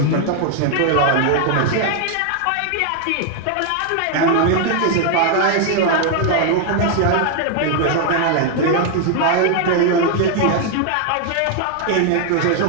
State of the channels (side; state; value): both; different; correlation 0.00